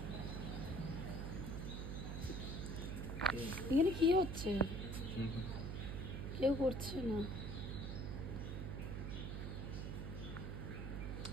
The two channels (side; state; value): right; noise; hum, 3 dB below the sound